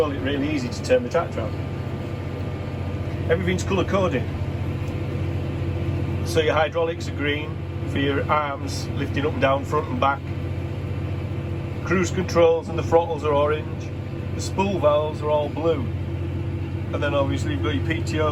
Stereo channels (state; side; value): identical; both; correlation 1.00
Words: it really easy to turn the tractor on. Everything's colour coded. So your hydraulics are green for your arms lifting up and down, front and back. Cruise controls and the throttles are orange. The spool valves are all blue. And then obviously you've got your